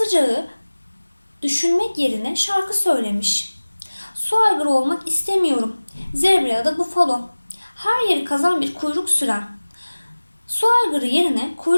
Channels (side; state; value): both; inverted; correlation -1.00